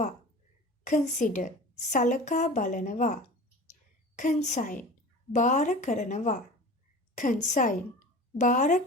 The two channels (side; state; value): both; normal; correlation 0.36